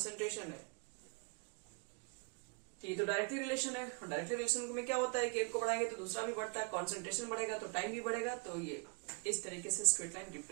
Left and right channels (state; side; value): quieter; left; 35.5 dB